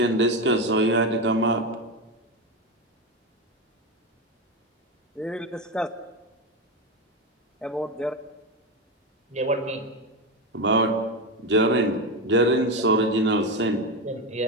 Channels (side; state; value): both; normal; correlation 0.15